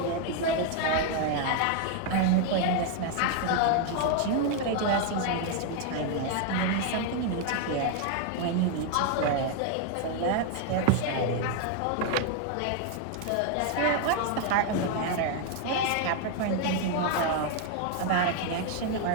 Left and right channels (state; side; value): different; both; correlation 0.01